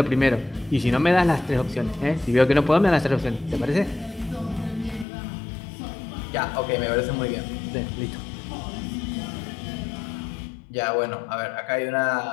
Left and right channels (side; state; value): right; drops out; at 5.1 s